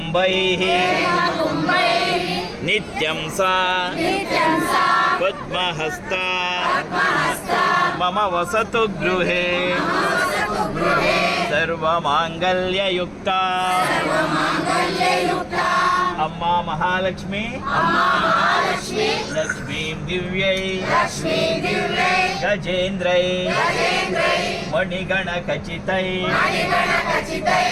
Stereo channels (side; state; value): both; identical; correlation 1.00